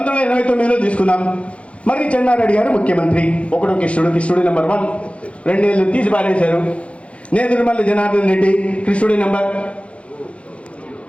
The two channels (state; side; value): late; right; 0.062 ms